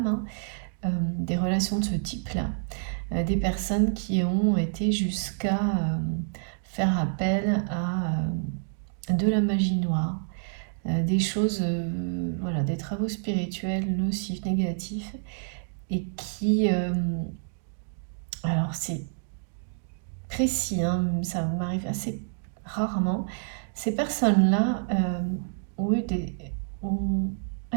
hein, des relations de ce type-là, des personnes qui ont été jusqu'à faire appel à de la magie noire, des choses, voilà, des travaux spirituels nocifs, négatifs, et qui, alors c'est précis, hein, ça m'arrive assez rarement, ces personnes-là ont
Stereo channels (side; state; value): left; silent; digital silence